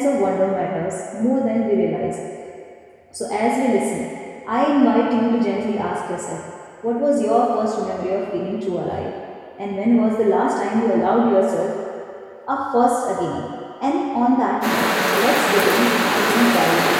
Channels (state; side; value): identical; both; correlation 1.00